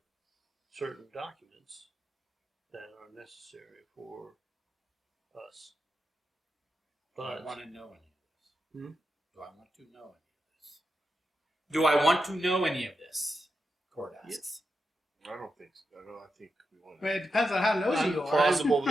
certain documents that are necessary for us. Do I But want to know any of this? Hmm? Do I want to know any of this? Do I want to know any of this? Cord asks. I don't think so. I think we want I mean, it depends on how nosy you are. plausible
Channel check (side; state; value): both; normal; correlation 0.87